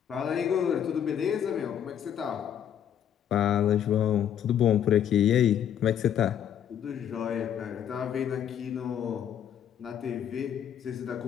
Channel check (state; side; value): quieter; right; 9.4 dB